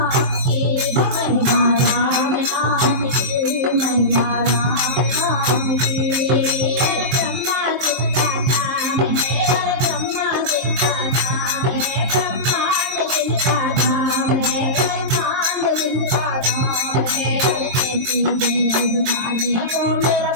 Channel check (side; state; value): left; late; 22 ms